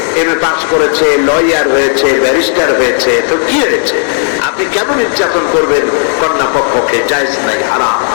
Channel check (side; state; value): right; silent; digital silence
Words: এমএ পাস করেছে, লয়ার হয়েছে, ব্যারিস্টার হয়েছে, তো কি হয়েছে? আপনি কেন নির্যাতন করবেন কন্যা পক্ষকে? পক্ষে জায়েজ নাই, হারাম।